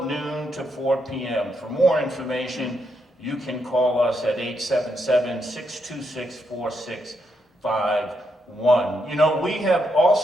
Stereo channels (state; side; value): normal; both; correlation 0.80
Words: noon to 4 p.m. For more information, you can call us at 877-626-4651. You know, we have